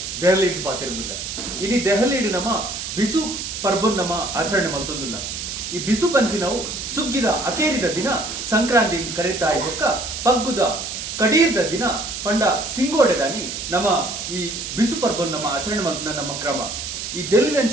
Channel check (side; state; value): right; noise; hiss, 6 dB below the sound